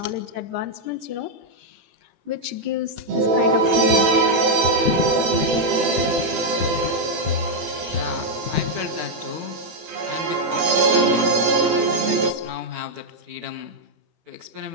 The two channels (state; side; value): late; left; 18 ms